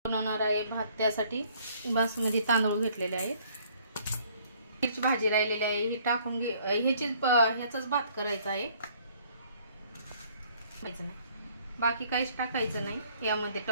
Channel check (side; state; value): both; inverted; correlation -0.60